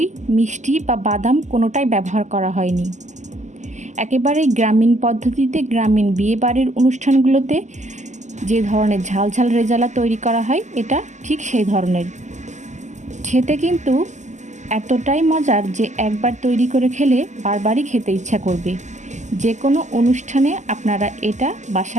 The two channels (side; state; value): left; late; 0.34 ms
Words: মিষ্টি বা বাদাম কোনোটাই ব্যবহার করা হয়নি। একেবারেই গ্রামীণ পদ্ধতিতে গ্রামীণ বিয়েবাড়ির অনুষ্ঠানগুলোতে যে ধরনের ঝাল ঝাল রেজালা তৈরি করা হয় এটা ঠিক সেই ধরনের। খেতে কিন্তু এতটাই মজার যে একবার তৈরি করে খেলে বারবারই খেতে ইচ্ছা করবে। যে কোনো অনুষ্ঠানে আপনারা এটা